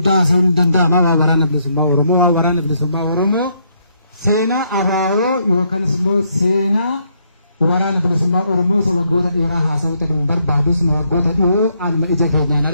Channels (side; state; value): both; inverted; correlation -0.73